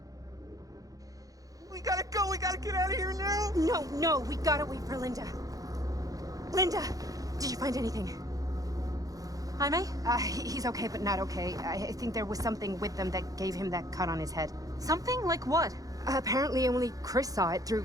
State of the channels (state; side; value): late; left; 0.17 ms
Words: Get out of here now! No, we gotta wait for Linda. Linda, did you find anything? Jaime? He's okay, but not okay. I think there was something with them that gave him that cut on his head. Something? Like what? Apparently only Chris saw it